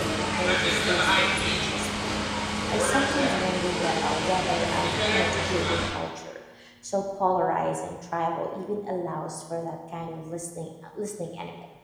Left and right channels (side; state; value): both; identical; correlation 1.00